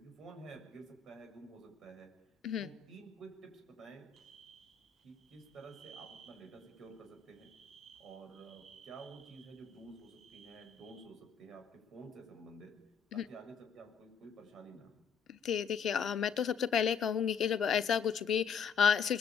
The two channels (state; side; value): quieter; right; 6.7 dB